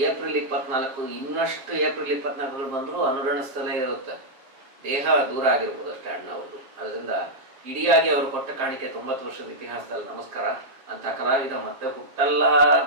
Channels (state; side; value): late; left; 7.6 ms